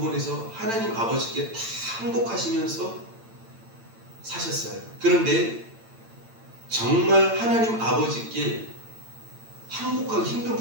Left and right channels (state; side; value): late; left; 8.9 ms